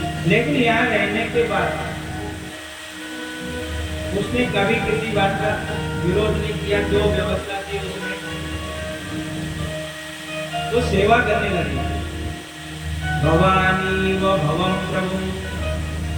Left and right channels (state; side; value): identical; both; correlation 1.00